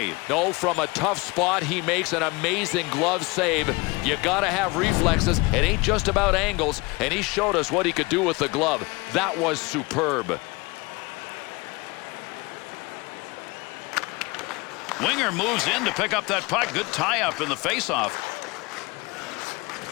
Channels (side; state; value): right; quieter; 25.2 dB